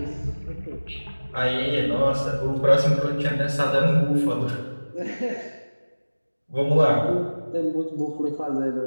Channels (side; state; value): both; inverted; correlation -1.00